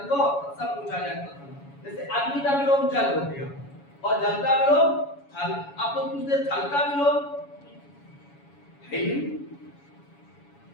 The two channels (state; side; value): late; right; 7.1 ms